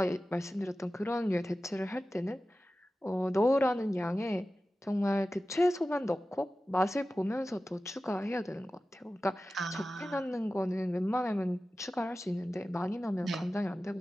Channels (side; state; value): both; normal; correlation 0.95